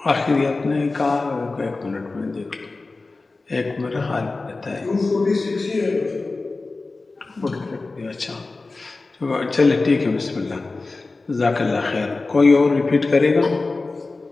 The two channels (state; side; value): quieter; right; 3.6 dB